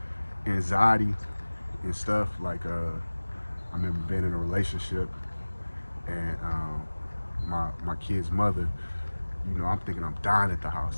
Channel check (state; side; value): inverted; both; correlation -1.00